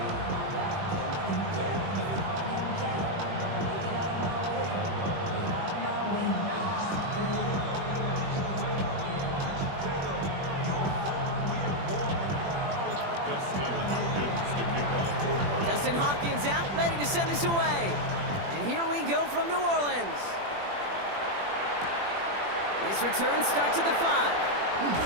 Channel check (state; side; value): late; left; 21 ms